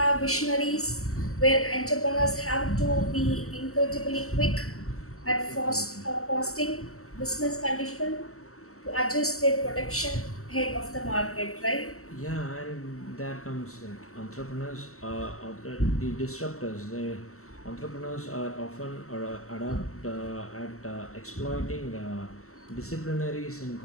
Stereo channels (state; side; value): late; right; 0.63 ms